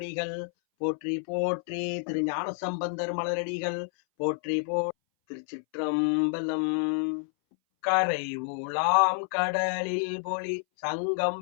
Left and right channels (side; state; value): right; silent; 59 dB below the other